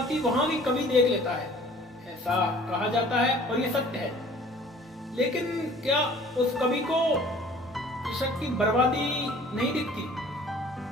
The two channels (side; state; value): both; normal; correlation 0.51